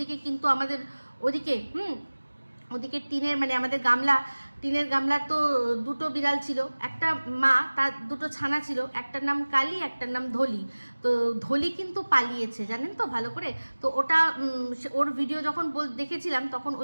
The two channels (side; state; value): both; inverted; correlation -1.00